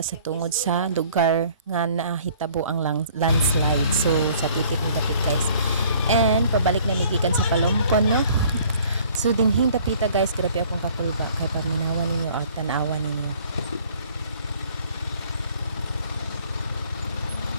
tungod sa lugar nga nahitabo ang landslide. So sa titik ni dapit guys. And pabalik na migikan sa Palompon no. So dinhing dapita guys, grabe akong kakulba kay paminawan ninyo at tanawan ninyo.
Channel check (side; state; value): both; inverted; correlation -0.55